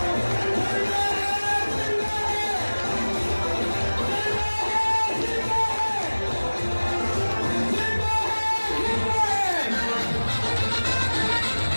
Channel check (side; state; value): both; inverted; correlation -1.00